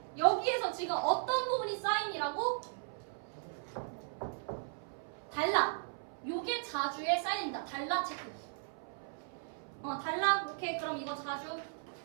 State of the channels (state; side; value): silent; left; 53 dB below the other